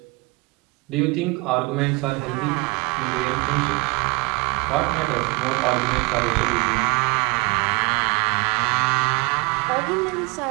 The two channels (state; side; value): quieter; left; 26.5 dB